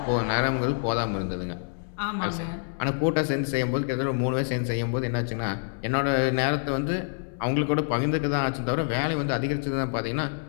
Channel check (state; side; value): silent; right; 60 dB below the other